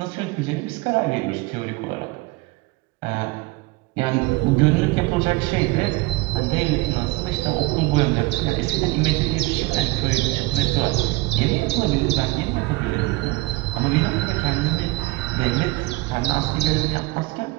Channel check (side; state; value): left; quieter; 21.3 dB